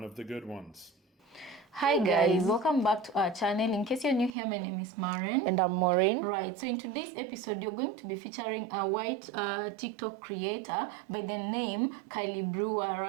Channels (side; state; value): left; drops out; at 4.4 s